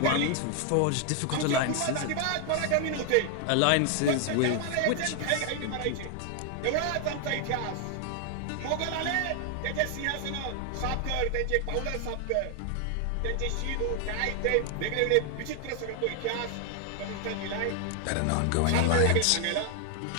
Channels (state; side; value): different; both; correlation 0.00